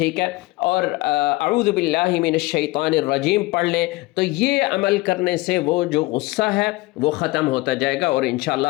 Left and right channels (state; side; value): quieter; right; 21.2 dB